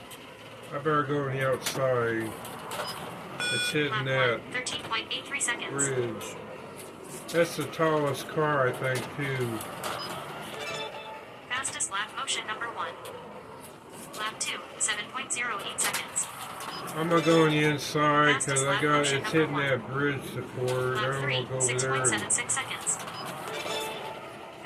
I better go on the outside. It's hitting Lap that 1, 13.83 seconds. bridge. That's the tallest car, I think, too. Fastest lap motion number 1. Lap 2, 7.08 seconds. I'm gonna go on the inside because it's hitting that bridge support. I Lap don't 3, want to go over there. 6.76 seconds.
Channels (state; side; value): identical; both; correlation 1.00